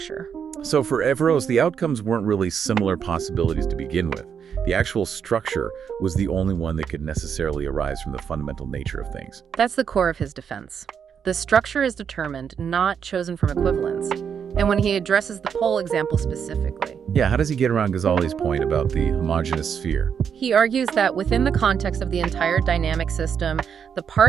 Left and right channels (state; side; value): quieter; left; 7.4 dB